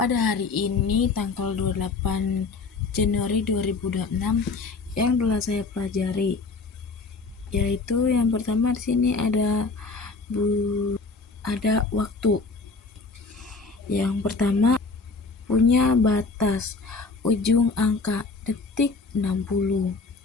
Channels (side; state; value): right; quieter; 4.1 dB